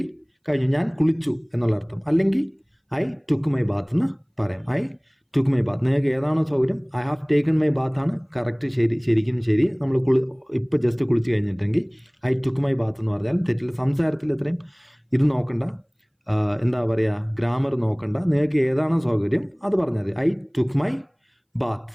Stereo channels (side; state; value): both; identical; correlation 1.00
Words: ഞാൻ കുളിച്ചു എന്നുള്ള അർത്ഥം. അല്ലെങ്കിൽ ഐ ടുക്ക് മൈ ബാത്ത് എന്ന് പറയാം. I took my Baat. നിങ്ങൾക്ക് ഏതാണോ സൗകര്യം. I have taken my Baat ആണ് കറക്റ്റ്, ശരിക്കും ശരി. നമ്മൾ ഇപ്പം ജസ്റ്റ് കുളിച്ച് കഴിഞ്ഞിട്ടെങ്കിൽ ഐ ടുക്ക് മൈ ബാത്ത് എന്ന് പറഞ്ഞാൽ തെറ്റില്ല. സംസാരത്തിൽ ഇത്രയും ഇത് നോക്കണ്ട, എന്താ പറയുക, ഗ്രാമർ നോക്കണ്ട. നിങ്ങൾക്ക് ഏതാണോ സൗകര്യം അത് പറഞ്ഞാൽ മതി. I took my bath.